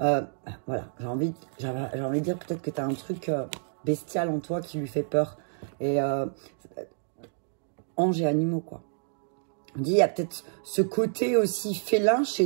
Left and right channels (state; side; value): silent; left; digital silence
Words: j'ai envie de dire peut-être que tu as un truc bestial en toi qui lui fait peur. Et anges et animaux, quoi. On dit, il y a peut-être ce côté aussi félin